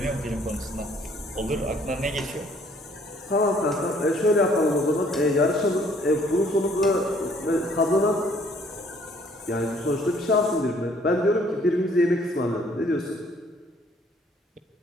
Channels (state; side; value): normal; both; correlation 0.61